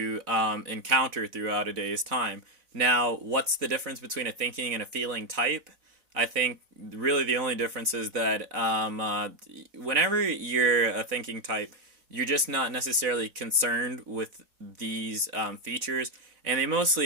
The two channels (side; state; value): left; late; 3.9 ms